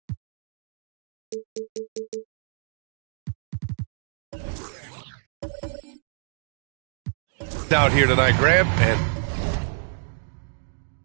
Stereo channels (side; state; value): left; silent; digital silence